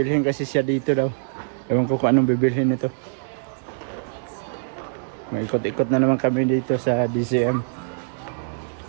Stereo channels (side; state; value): left; silent; digital silence